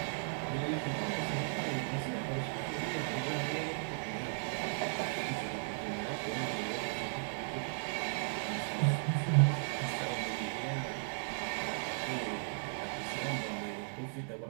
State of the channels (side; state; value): left; silent; digital silence